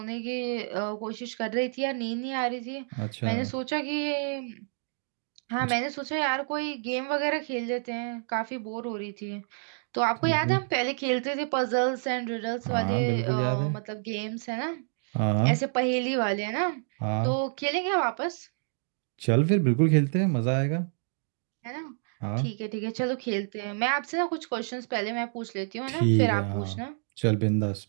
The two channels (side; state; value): left; silent; digital silence